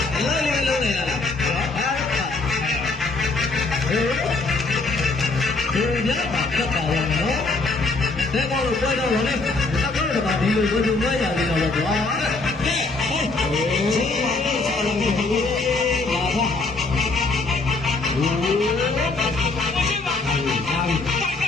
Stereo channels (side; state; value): right; quieter; 3.5 dB